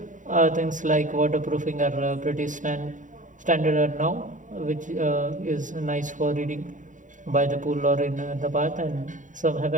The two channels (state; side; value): late; left; 0.37 ms